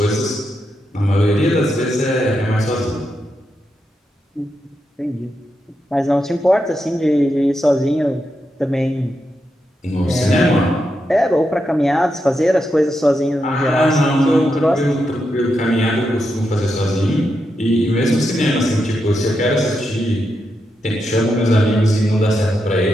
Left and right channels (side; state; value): both; normal; correlation 0.85